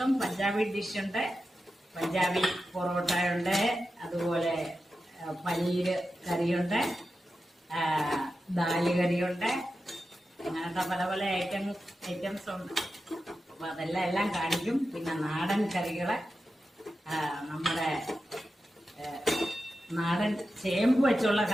പഞ്ചാബി ഡിഷുണ്ട്, പഞ്ചാബി പൊറോട്ട ഉണ്ട്, അതുപോലെ പനീര് കറിയുണ്ട്, ദാല് കറിയുണ്ട്, അങ്ങനത്തെ പല പല ഐറ്റംസ് ഉണ്ട്. അപ്പൊ അതെല്ലാം കാണിക്കും. പിന്നെ നാടൻ കറികള്, നമ്മുടെ നാടൻ ചേമ്പ് വെച്ചുള്ള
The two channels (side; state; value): both; normal; correlation 0.91